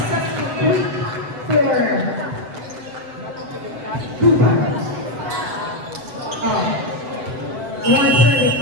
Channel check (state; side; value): late; left; 7.8 ms